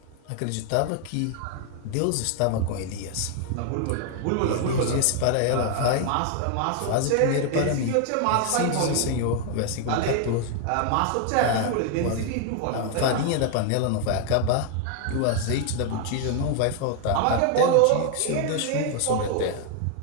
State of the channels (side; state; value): both; different; correlation 0.00